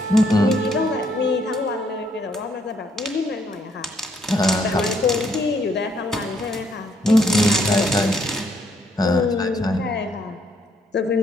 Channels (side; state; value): both; normal; correlation 0.70